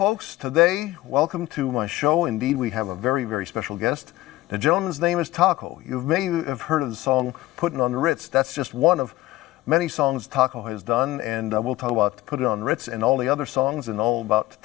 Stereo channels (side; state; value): right; quieter; 17.2 dB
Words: today, welcome to my show. Indeed, we have a very, very special guest. The gentleman's name is Taco. You may have heard of the song Puttin' on the Ritz. That's just one of many songs Taco has done, and we'll talk about Put It on Ritz and all the other songs and all about